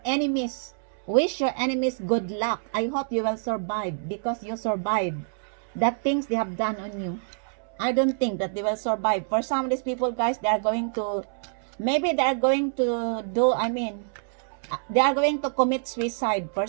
enemies, Wish your enemies good luck. I hope you will survive because you survived the things they have done on you. I don't think that they will survive. For some of these people, guys, they are going to, maybe they are going to do, they are going to commit suicide. For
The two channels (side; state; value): left; silent; 61 dB below the other